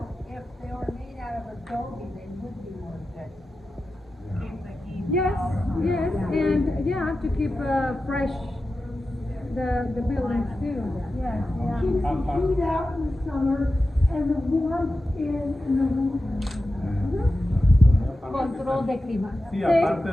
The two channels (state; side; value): normal; both; correlation 0.93